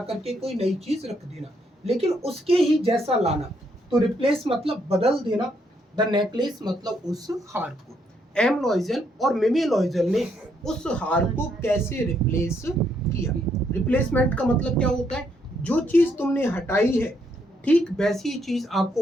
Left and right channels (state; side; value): normal; both; correlation 0.74